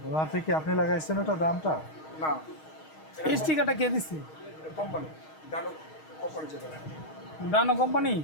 ওনার থেকে আপনি লাগাইছেন ওটা দামটা? না, এই স্টিকারটা কে দিচ্ছে? কোম্পানি ডানো কোম্পানি যেটা। ডানো কোম্পানি?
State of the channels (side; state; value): right; late; 6.4 ms